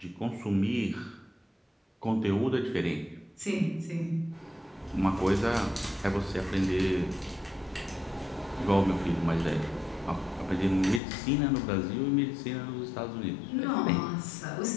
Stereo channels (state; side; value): drops out; right; at 11.0 s